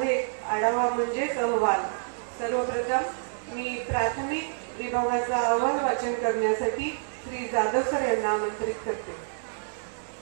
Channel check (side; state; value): left; silent; digital silence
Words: आढावा म्हणजेच अहवाल. सर्वप्रथम मी प्राथमिक विभागाचा अहवाल वाचन करण्यासाठी श्री जाधव सर यांना आमंत्रित करते.